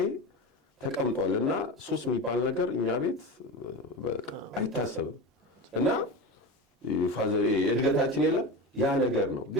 ተቀምጧል። እና ሱስ የሚባል ነገር እኛ ቤት በቃ አይታሰብም። እና ፋዘር እድገታችን የለም ያ ነገር ነው።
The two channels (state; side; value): normal; both; correlation 0.25